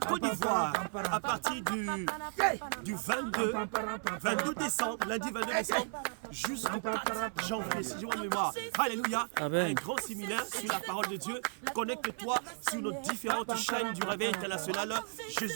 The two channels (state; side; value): silent; left; 55 dB below the other